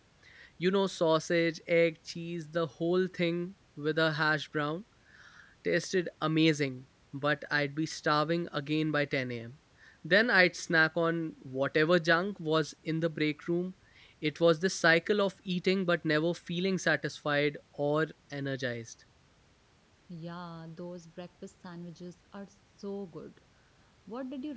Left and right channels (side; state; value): both; identical; correlation 1.00